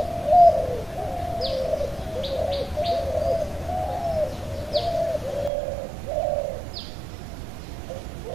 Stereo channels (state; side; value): drops out; left; at 5.5 s